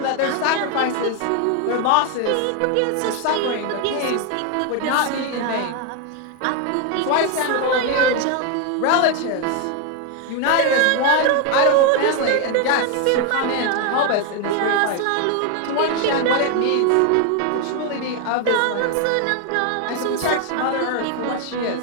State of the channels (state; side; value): different; both; correlation 0.01